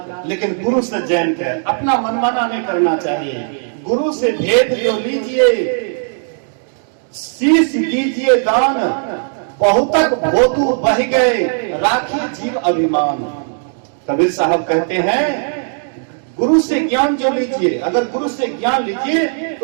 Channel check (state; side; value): silent; left; digital silence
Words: लेकिन गुरु से जैन के अपना मनमाना नहीं करना चाहिए। गुरु से भेद जो लीजिए, शीश दीजिए दान, बहुतक भोतु बह गए, राखिए जीव अभिमान। कबीर साहब कहते हैं गुरु से ज्ञान जो लीजिए, अगर गुरु से ज्ञान लीजिए